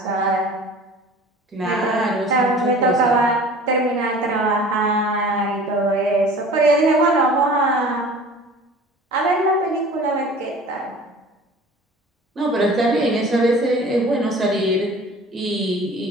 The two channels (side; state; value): both; normal; correlation 0.44